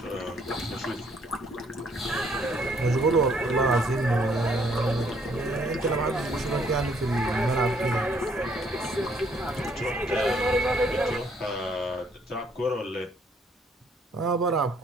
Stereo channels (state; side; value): normal; both; correlation 0.66